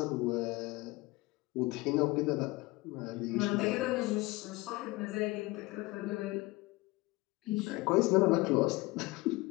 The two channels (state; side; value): quieter; right; 21.9 dB